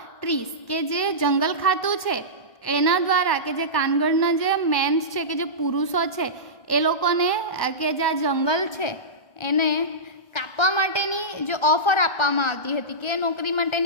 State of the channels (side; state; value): right; late; 1.1 ms